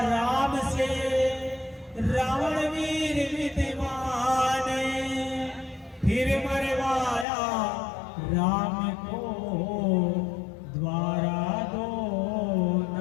राम से रावण वीर विद्वान फिर मरवाया राम को द्वारा दो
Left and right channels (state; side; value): drops out; right; at 7.2 s